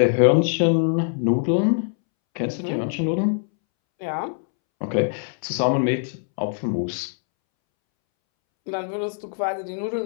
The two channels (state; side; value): silent; right; 63 dB below the other